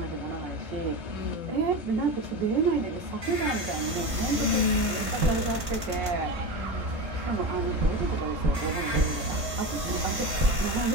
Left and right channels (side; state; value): left; late; 3.3 ms